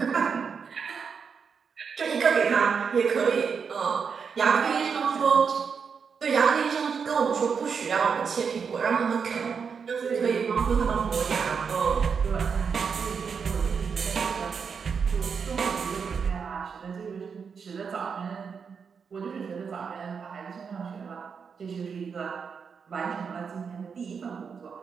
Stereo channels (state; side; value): quieter; left; 6.1 dB